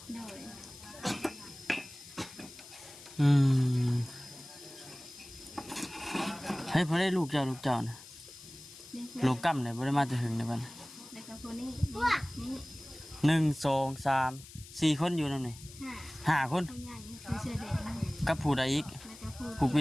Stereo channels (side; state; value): left; noise; hiss, 17 dB below the sound